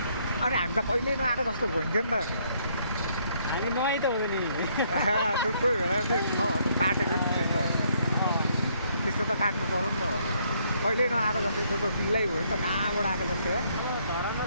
अनि हामी त कहिले नआएको जस्तो भइन्थ्यो नि त। हामी नआइ त हुँदैन नि। कोही बेला चाहिँ काटेको नि त्यस्तो त काट्नु पऱ्यो नि त भनेर। कहिले नआएको जस्तो त्यो त बिल्लै भयो नि त, कहाँबाट आएको जस्तो है। धरानमा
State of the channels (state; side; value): inverted; both; correlation -0.69